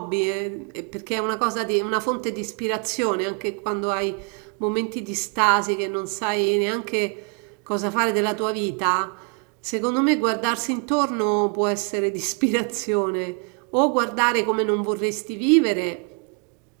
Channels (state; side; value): quieter; left; 38.9 dB